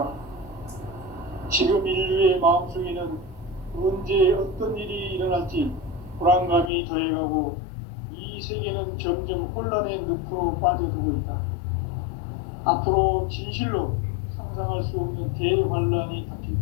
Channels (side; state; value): right; drops out; at 6.7 s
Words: 지금 인류의 마음속에는 언제 어떤 일이 일어날지 불안감이 더해가고 이 세계는 점점 혼란의 늪으로 빠져들고 있다. 앞으로 진실로 상상할 수 없는 대환란이 닥칠